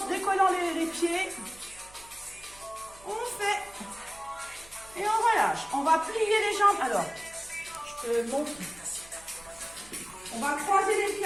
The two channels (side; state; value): right; noise; hum, 24 dB below the sound